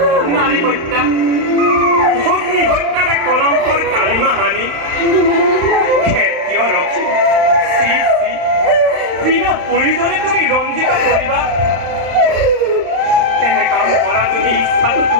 নারী হত্যা অগ্নি হত্যার কলঙ্কর কালিমা হানি ক্ষেত্রীয় রক্ষী বিনা প্রয়োজনে তুমি রঞ্জিত করিবা এনে কাম করা যদি ইচ্ছাটো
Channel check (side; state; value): left; late; 35 ms